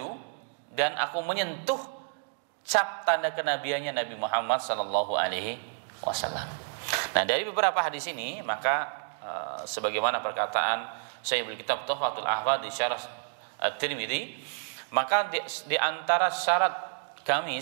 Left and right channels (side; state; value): left; silent; digital silence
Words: dan aku menyentuh cap tanda kenabiannya Nabi Muhammad sallallahu alaihi wasallam. Nah, dari beberapa hadis ini maka sebagaimana perkataan Syaikh Kitab Tuhfatul Ahfadh di Syarah At-Tirmidzi, maka di antara syarat